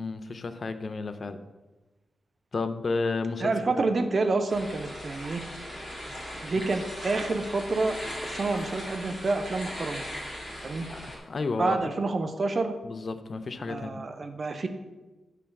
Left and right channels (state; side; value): normal; both; correlation 0.90